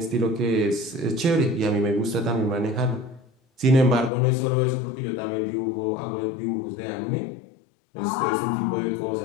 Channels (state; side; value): drops out; right; at 4.1 s